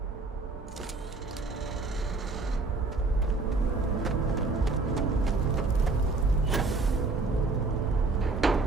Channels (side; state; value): left; quieter; 3.6 dB